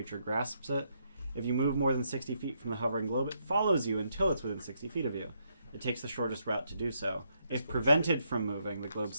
grasps it. If you move more than 60 feet from the hovering globe, it follows you until it's within 60 feet of you. It takes the shortest route to do so. If prevented from moving, the globe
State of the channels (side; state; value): both; inverted; correlation -0.76